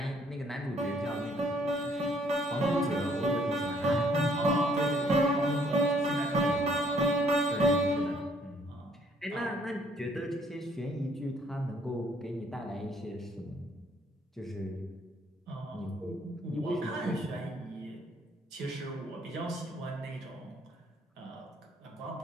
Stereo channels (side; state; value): both; normal; correlation 0.65